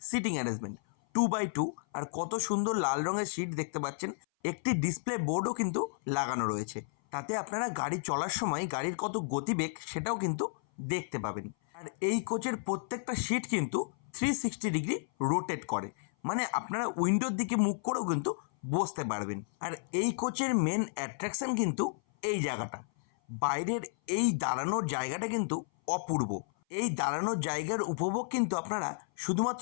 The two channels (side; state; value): right; silent; 56 dB below the other